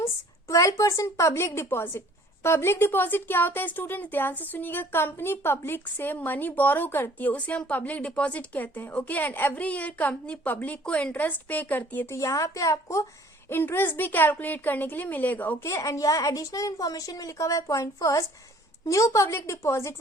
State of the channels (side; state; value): both; normal; correlation 0.55